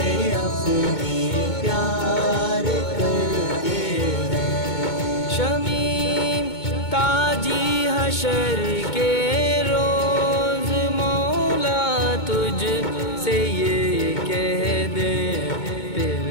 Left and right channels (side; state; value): right; late; 2.2 ms